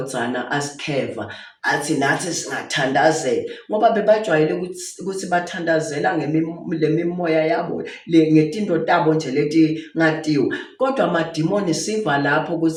asikheva athi nathi singathandazela, ngoba bebajwayele ukuthi bathandazela ngemimoya yabo ngetinto tabo nje leti ngatiwe. Kodwa amadimoni siva lapho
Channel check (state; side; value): identical; both; correlation 1.00